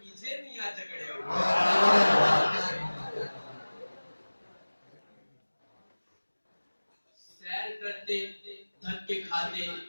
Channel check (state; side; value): inverted; both; correlation -1.00